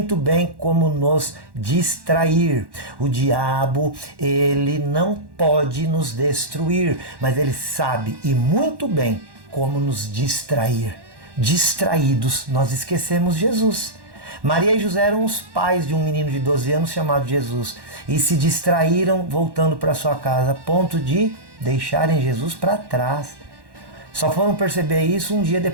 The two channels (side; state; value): left; late; 1.1 ms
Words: bem como nos distrair. O diabo, ele não pode nos destruir, mas ele sabe e muito bem como nos distrair. Distraídos, nós esquecemos Jesus. Maria e José eram os pais de um menino de 12 anos chamado Jesus e se distraíram voltando para sua casa, a ponto de deixarem Jesus para trás. Só foram perceber isso um dia